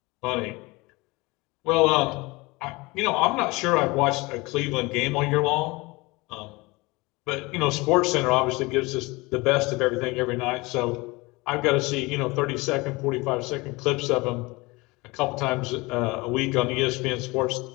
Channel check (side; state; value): right; quieter; 23.8 dB